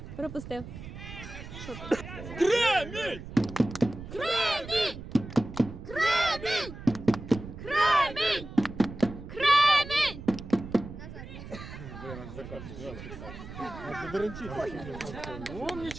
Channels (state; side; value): noise; right; rumble, 12 dB below the sound